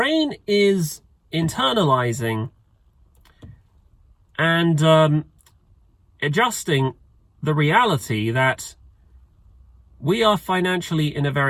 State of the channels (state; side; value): identical; both; correlation 1.00